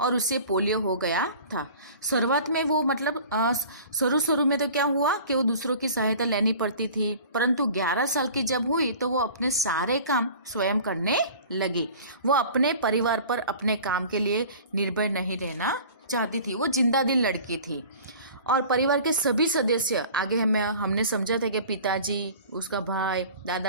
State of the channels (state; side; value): inverted; both; correlation -0.43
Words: और उसे पोलियो हो गया था। शुरुआत में वो शुरू में तो क्या हुआ कि वो दूसरों की सहायता लेनी पड़ती थी, परंतु 11 साल की जब हुई तो वो अपने सारे काम स्वयं करने लगी। वो अपने परिवार पर अपने काम के लिए निर्भर नहीं रहना चाहती थी। वो जिंदा दिल लड़की थी और परिवार के सभी सदस्य आगे हमने समझा था कि पिताजी, उसका भाई,